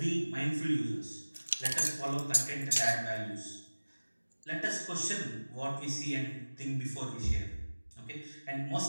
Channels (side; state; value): both; inverted; correlation -1.00